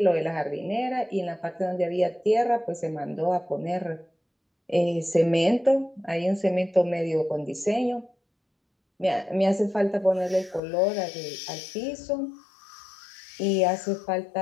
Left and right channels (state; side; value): drops out; right; at 10.6 s